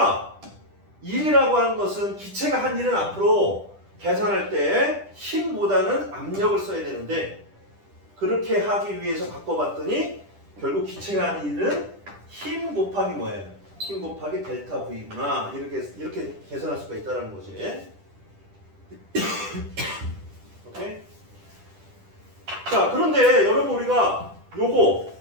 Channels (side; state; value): left; late; 10 ms